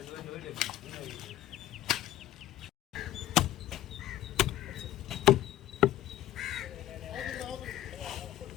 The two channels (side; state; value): right; quieter; 13.6 dB